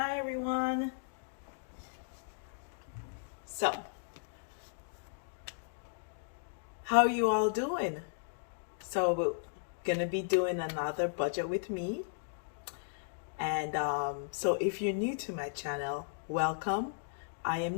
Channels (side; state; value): right; silent; digital silence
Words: everyone. So, how are you all doing? So we're gonna be doing another budget with me. And so if you're new to my channel, welcome. I am